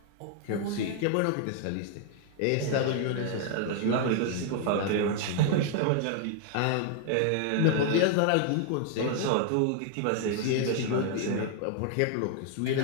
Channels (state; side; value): different; both; correlation 0.00